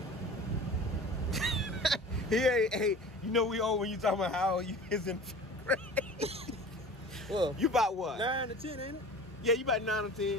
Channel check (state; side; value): normal; both; correlation 0.40